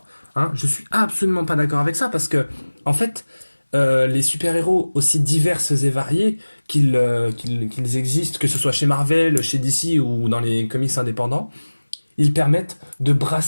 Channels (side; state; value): both; inverted; correlation -1.00